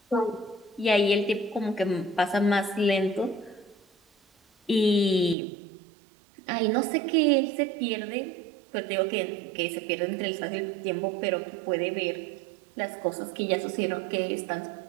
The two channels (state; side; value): drops out; left; at 5.4 s